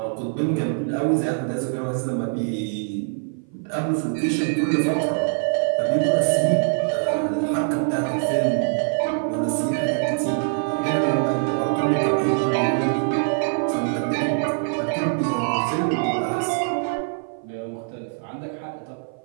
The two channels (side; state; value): left; silent; 56 dB below the other